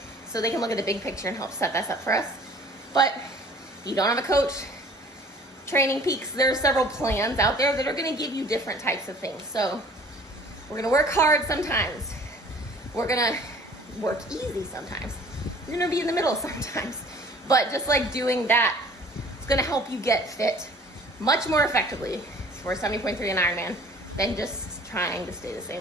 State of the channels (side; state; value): both; normal; correlation 0.50